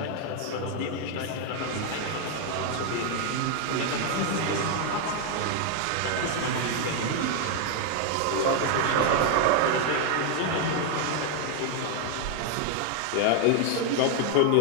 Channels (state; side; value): different; both; correlation 0.00